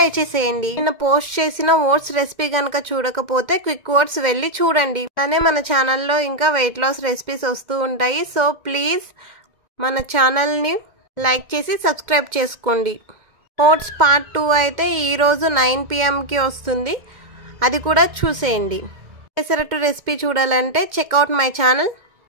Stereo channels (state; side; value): late; left; 1.9 ms